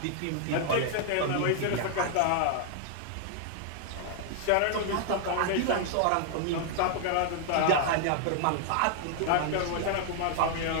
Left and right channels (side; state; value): both; different; correlation -0.01